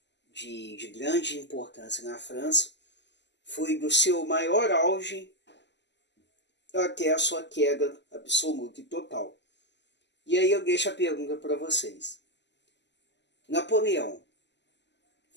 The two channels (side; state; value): right; late; 0.51 ms